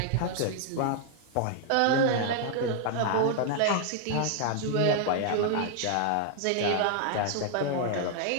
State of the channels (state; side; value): different; both; correlation 0.00